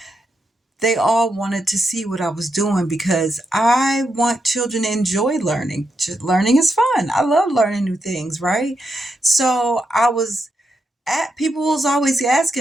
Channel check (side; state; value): both; normal; correlation 0.84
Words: they all wanted to see what I was doing, because I want children to enjoy learning. Learning is fun. I love learning new things, right? So people was always